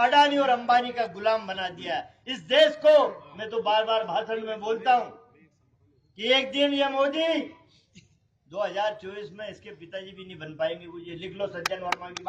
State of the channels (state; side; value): identical; both; correlation 1.00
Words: अडानी और अंबानी का गुलाम बना दिया है। इस देश को, मैं तो बार बार भाषण में बोलता हूं कि एक दिन ये मोदी 2024 में इसके पिताजी भी नहीं बन पाएंगे। मुझे लिख लो सज्जन वर्मा की